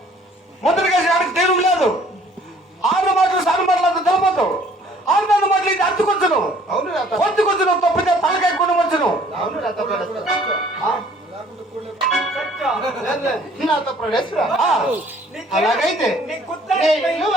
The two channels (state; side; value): normal; both; correlation 0.57